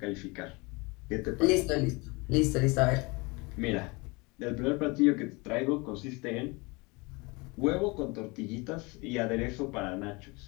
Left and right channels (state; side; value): quieter; right; 26.7 dB